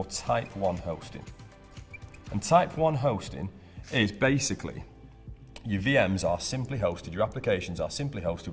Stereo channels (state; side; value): identical; both; correlation 1.00